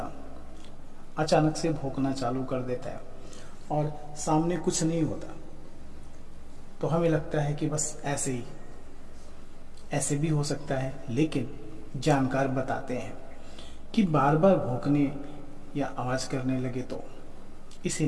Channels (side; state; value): both; identical; correlation 1.00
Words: अचानक से भौंकना चालू कर देता है और सामने कुछ नहीं होता, तो हमें लगता है कि बस ऐसे भी हो सकता है। लेकिन जानकार बताते हैं कि बार बार भौंकने या आवाज करने लगे तो इसे